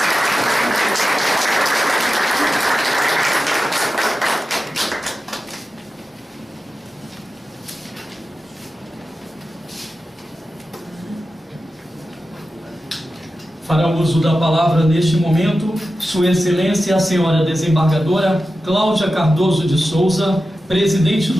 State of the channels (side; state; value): both; normal; correlation 0.93